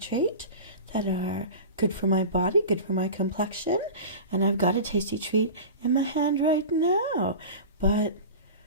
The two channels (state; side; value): inverted; both; correlation -0.32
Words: that are good for my body, good for my complexion, and I've got a tasty treat in my hand right now. But